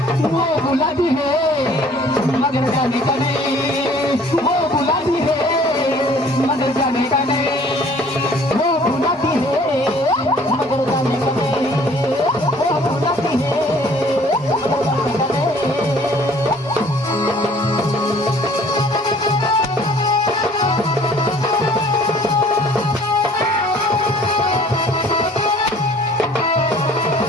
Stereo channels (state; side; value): normal; both; correlation 0.54